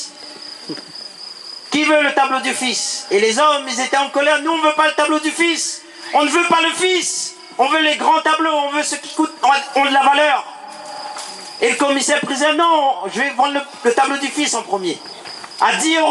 Qui veut le tableau du fils? Et les hommes, ils étaient en colère. Nous, on ne veut pas le tableau du fils. On ne veut pas le fils. On veut les grands tableaux. On veut ceux qui ont de la valeur. Et le commissaire-priseur, non, je vais vendre le tableau du fils en premier. À 10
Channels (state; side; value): identical; both; correlation 1.00